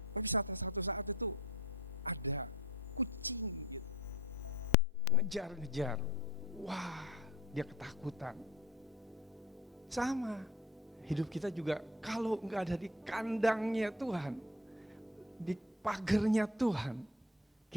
Tapi satu saat itu ada kucing gitu, ngejar-ngejar. Wah, dia ketakutan. Sama, hidup kita juga kalau gak ada di kandangnya Tuhan, di pagernya Tuhan,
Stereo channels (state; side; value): normal; both; correlation 0.42